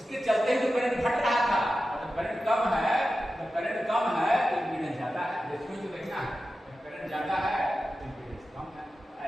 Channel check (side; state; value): both; normal; correlation 0.93